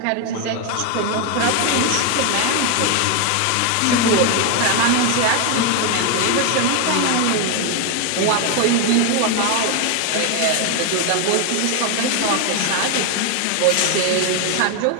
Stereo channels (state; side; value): different; both; correlation 0.01